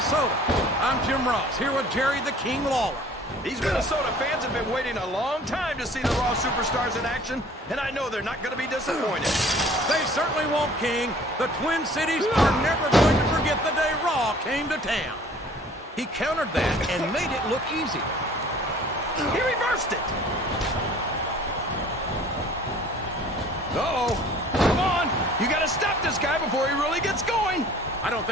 I'm Jim Ross, here with Jerry the King Lawler. These Minnesota fans have been waiting a long time to see the Raw Superstars in action, and I know they're not going to be disappointed. They certainly won't, King. The Twin Cities are never going to forget the day Raw came to town. He countered that and made it look easy. He reversed it. Uh-oh. Come on. You got to stop this guy before he really gets going. I don't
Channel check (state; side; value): normal; both; correlation 0.51